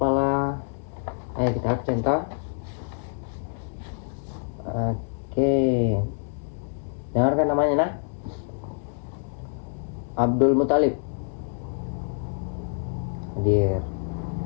lah. Ayo kita absen toh. Oke. Dengarkan namanya nah. Abdul Muthalib. Hadir.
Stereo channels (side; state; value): right; silent; digital silence